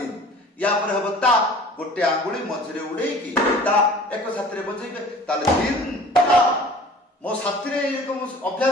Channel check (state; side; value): normal; both; correlation 0.46